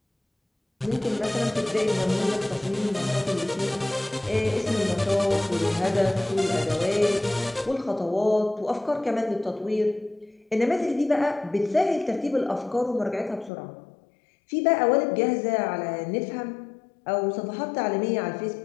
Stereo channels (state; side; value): drops out; right; at 13.5 s